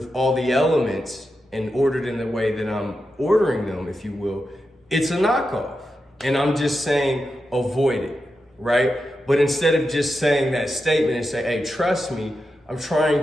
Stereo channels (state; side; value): normal; both; correlation 0.89